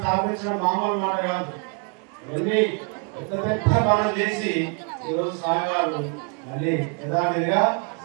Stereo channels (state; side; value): quieter; left; 38.7 dB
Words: మామూలు మాట కాదు. ఇవన్నీ పెద్ద పెద్ద పనులు చేసి ఈరోజు స్వామివారు మళ్ళీ యథావిధిగా